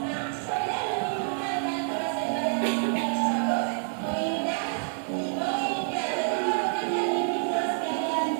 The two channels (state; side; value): silent; left; digital silence